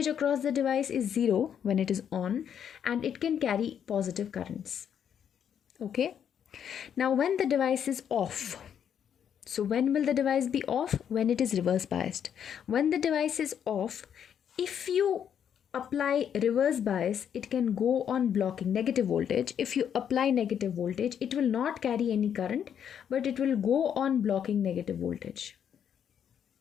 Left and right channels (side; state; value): right; quieter; 8.6 dB